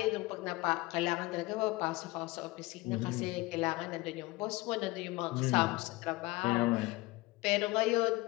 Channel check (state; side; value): quieter; right; 21.6 dB